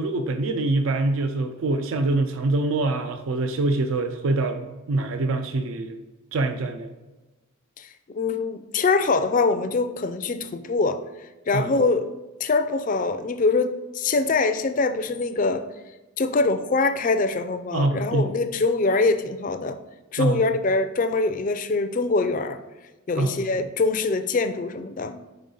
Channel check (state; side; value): normal; both; correlation 0.17